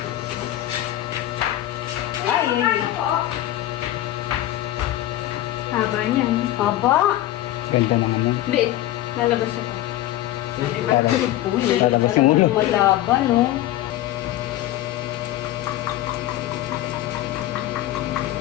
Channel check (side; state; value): right; quieter; 14.3 dB